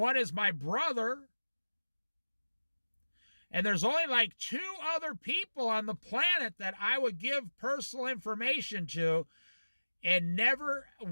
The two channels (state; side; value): inverted; both; correlation -1.00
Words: is my brother. And there's only like 2 other people on the planet that I would give personal information to and never